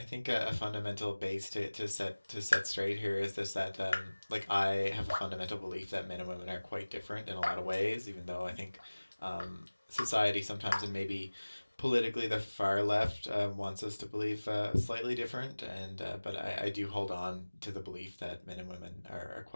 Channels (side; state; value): both; inverted; correlation -1.00